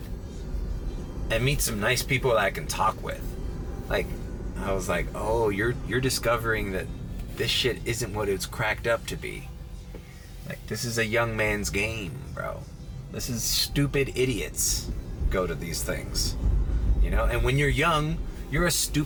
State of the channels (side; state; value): both; identical; correlation 1.00